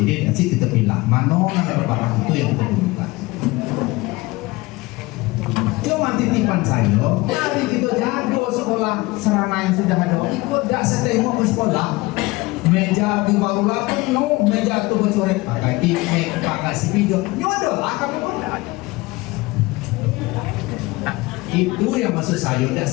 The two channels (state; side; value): quieter; right; 21.7 dB